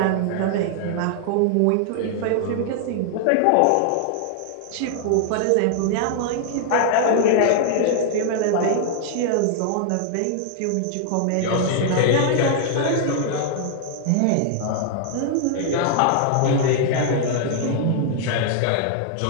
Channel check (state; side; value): different; both; correlation 0.00